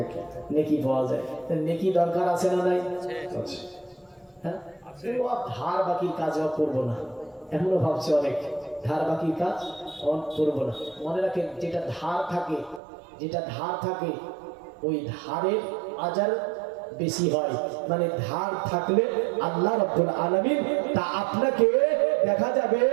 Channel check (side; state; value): left; drops out; at 12.8 s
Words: নেকি পাওয়া যায়। নেকি দরকার আছে না নাই? হ্যাঁ, ধার বাকির কাজ করবো না, এমনও ভাবছে অনেক, ধার বাকির কাজ করবো না। মনে রাখেন যেটা ধার থাকে ওই ধারের আজার বেশি হয়। মানে ধার থাকলে আল্লাহ রাব্বুল আলামিন তা আপনাকে দেখা যাবে